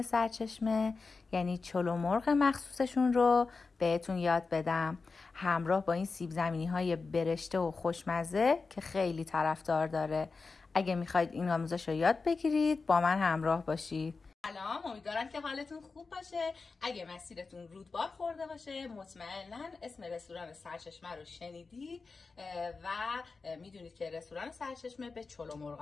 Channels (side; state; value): right; quieter; 4.3 dB